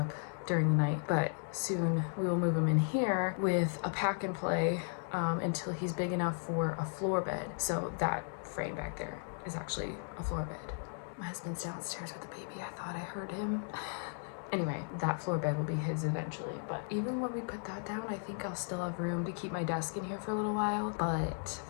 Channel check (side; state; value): right; silent; 54 dB below the other